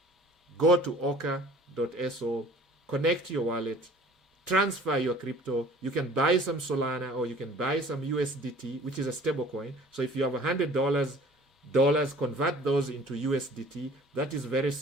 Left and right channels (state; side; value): normal; both; correlation 0.49